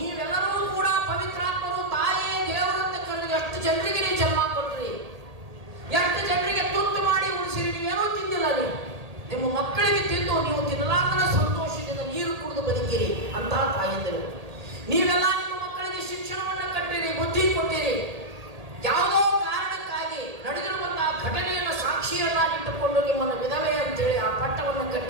ಕೂಡ ಪವಿತ್ರಾತ್ಮರು, ತಾಯಿ ದೇವರಂತ ಕರೆದು ಎಷ್ಟು ಜನರಿಗೆ ನೀವು ಜನ್ಮ ಕೊಟ್ರಿ, ಎಷ್ಟು ಜನರಿಗೆ ತುತ್ತು ಮಾಡಿ ಉಳಿಸಿರಿ. ನೀವೇನೋ ತಿಂದಿಲ್ಲ, ನೀವು ನಿಮ್ಮ ಮಕ್ಕಳಿಗೆ ತಿಂದು ನೀವು ತಿನ್ನಲಾಗದ ಸಂತೋಷದಿಂದ ನೀರು ಕುಡಿದು ಬದುಕಿರಿ ಅಂತ ತಾಯಂದಿರು. ನೀವೆಲ್ಲ ನಿಮ್ಮ ಮಕ್ಕಳಿಗೆ ಶಿಕ್ಷಣವನ್ನು ಕಟ್ಟಿರಿ, ಬುದ್ಧಿ ಕೊಟ್ಟಿರಿ. ಯಾವುದೋ ಕಾರಣಕ್ಕಾಗಿ ನಡೆದಿರುವಂತಹ ಘಟನೆಯನ್ನು ಸಾಕ್ಷಿಯನ್ನಾಗಿಟ್ಟುಕೊಂಡು ನಿಮ್ಮನ್ನು ವಿಧವೆ ಅಂತೇಳಿ ಆ ಪಟ್ಟವನ್ನು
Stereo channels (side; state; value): left; late; 1.8 ms